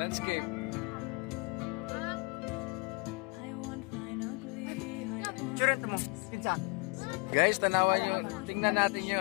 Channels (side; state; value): right; quieter; 30.8 dB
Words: Guys, tanawan nyo. Tingnan natin